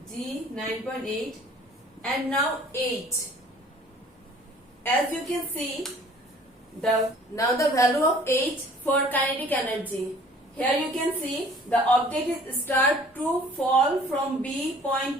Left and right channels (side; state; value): both; normal; correlation 0.52